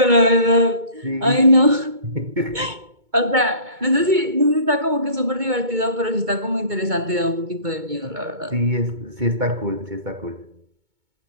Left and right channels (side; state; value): left; late; 2.2 ms